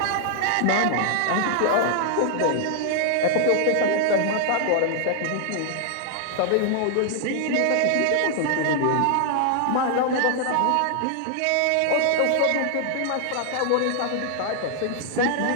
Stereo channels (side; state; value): both; different; correlation 0.00